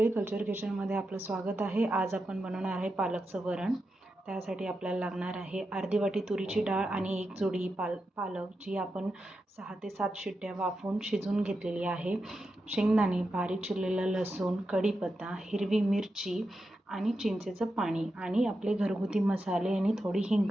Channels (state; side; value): normal; both; correlation 0.88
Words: कल्चर किचनमध्ये आपलं स्वागत आहे। आज आपण बनवणार आहे पालकचं वरण। त्यासाठी आपल्याला लागणार आहे अर्धी वाटी तुरीची डाळ आणि एक जोडी पालक, जी आपण 6 ते 7 शिट्ट्या वाफवून शिजवून घेतलेली आहे। शेंगदाणे, बारीक चिरलेला लसूण, कढीपत्ता, हिरवी मिरची आणि चिंचेचं पाणी आणि आपले घरगुती मसाले आणि थोडी